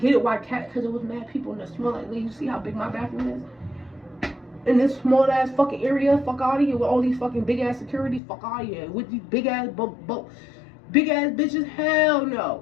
it why Kat, because it was mad people in the small, like, you see how big my bathroom is? In this small ass fucking area, fuck out of here with all these fucking big ass securities, fuck out of here with these big ass bitches. Hell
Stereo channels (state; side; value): drops out; right; at 8.2 s